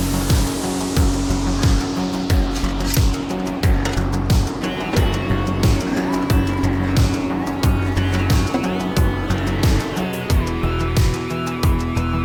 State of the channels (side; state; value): both; identical; correlation 1.00